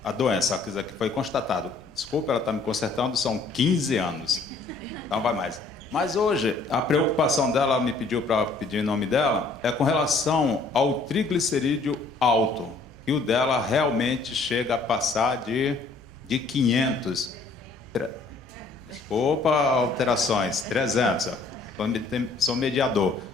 doença, que foi constatado. Desculpa, ela está me consertando, são 15 anos. Então vai mais. Mas hoje, a preocupação dela, ela me pediu para pedir em nome dela, é com relação ao triglicerídeo alto. E o dela realmente chega a passar de 500. Desculpa, alterações, 300. Sou mediador.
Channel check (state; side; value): quieter; right; 3.8 dB